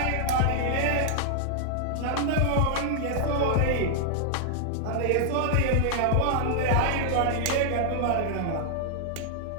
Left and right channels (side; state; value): both; different; correlation -0.01